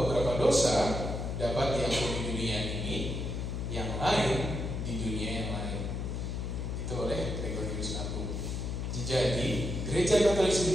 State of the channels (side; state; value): left; noise; hum, 3 dB below the sound